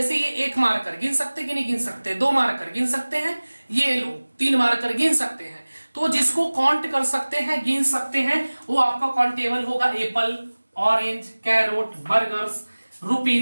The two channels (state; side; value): inverted; both; correlation -1.00